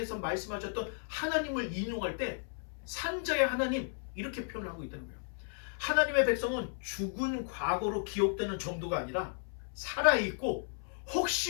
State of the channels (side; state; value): right; silent; 55 dB below the other